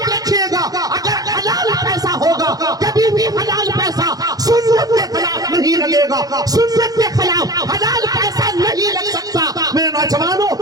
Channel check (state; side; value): late; left; 0.18 ms